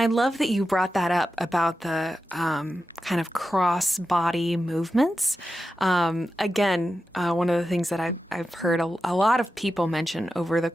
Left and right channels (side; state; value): both; normal; correlation 0.91